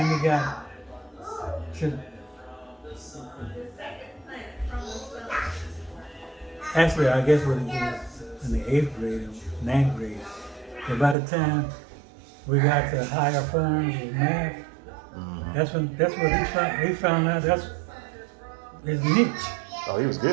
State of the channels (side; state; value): left; drops out; at 11.2 s